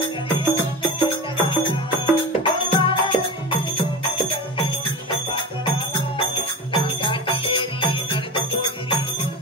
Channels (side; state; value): both; normal; correlation 0.27